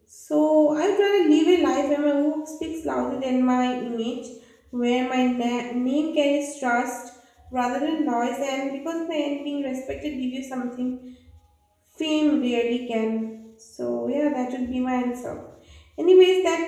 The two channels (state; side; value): identical; both; correlation 1.00